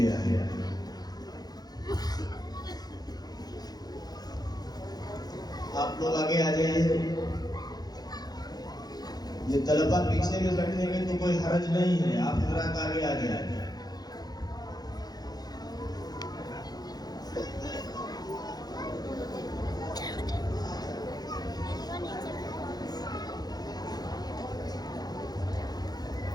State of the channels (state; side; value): late; right; 0.19 ms